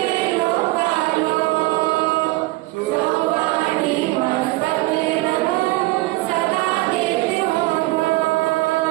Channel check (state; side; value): quieter; left; 20.3 dB